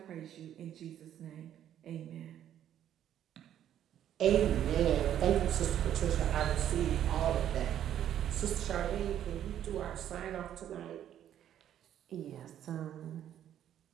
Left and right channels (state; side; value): quieter; left; 10.7 dB